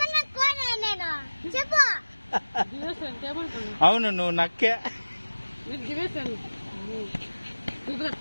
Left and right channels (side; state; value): both; inverted; correlation -1.00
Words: అవును నువ్వు నక్కే నీకు దివేసాను